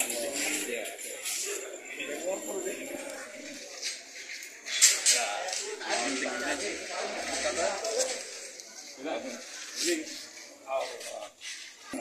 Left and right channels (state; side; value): identical; both; correlation 1.00